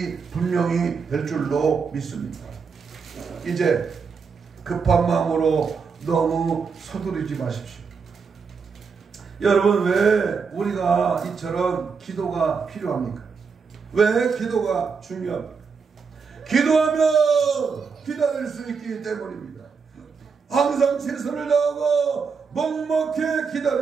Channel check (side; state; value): left; quieter; 5.5 dB